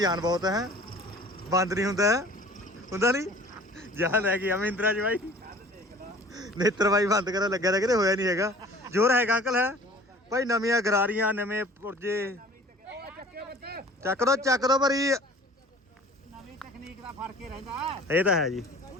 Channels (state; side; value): normal; both; correlation 0.47